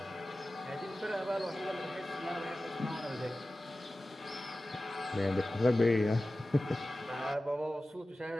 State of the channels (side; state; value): both; normal; correlation 0.95